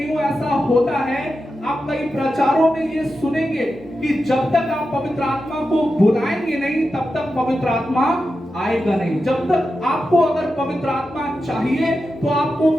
ऐसा होता है, आप कई प्रचारों में ये सुनेंगे कि जब तक आप पवित्र आत्मा को बुलाएंगे नहीं तब तक पवित्र आत्मा आएगा नहीं। जब तक आपको अगर पवित्र आत्मा चाहिए तो आपको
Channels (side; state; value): both; normal; correlation 0.90